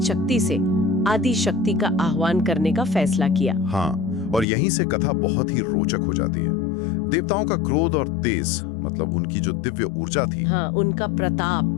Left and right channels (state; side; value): drops out; right; at 4.5 s